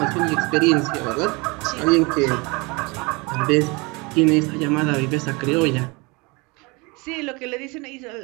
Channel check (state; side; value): quieter; left; 27.2 dB